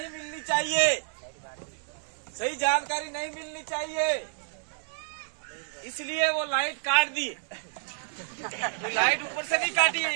मिलनी चाहिए, सही जानकारी नहीं मिलनी चाहिए, इसलिए वो लाइट काट दी। लाइट ऊपर से नहीं काटी है,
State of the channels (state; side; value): silent; left; 58 dB below the other